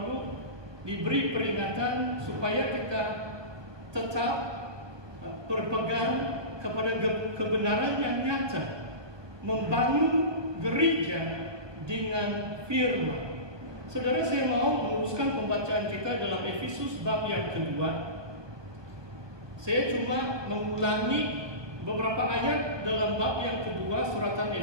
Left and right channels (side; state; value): left; late; 1.2 ms